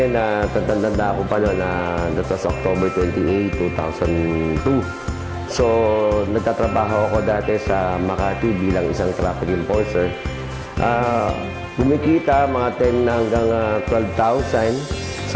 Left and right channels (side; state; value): both; identical; correlation 1.00